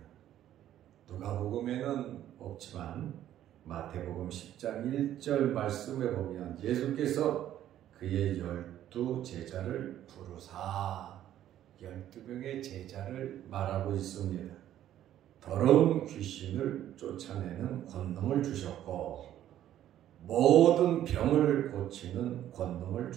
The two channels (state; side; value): quieter; left; 11.9 dB